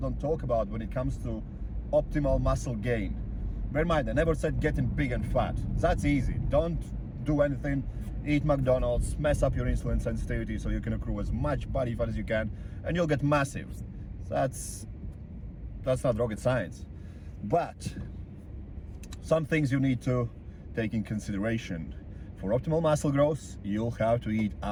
talk about when it comes to optimal muscle gain. Bear in mind, I never said getting big and fat. That's easy. Don't do anything, eat McDonald's, mess up your insulin sensitivity so you can accrue as much body fat as you can, and you'll get massive. That's not rocket science. But some things you need to take in consideration. For optimal muscle growth, you'll have to eat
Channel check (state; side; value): identical; both; correlation 1.00